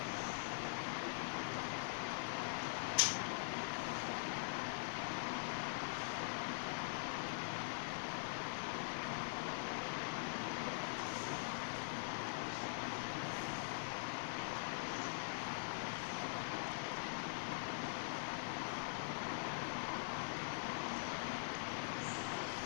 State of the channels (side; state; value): right; silent; digital silence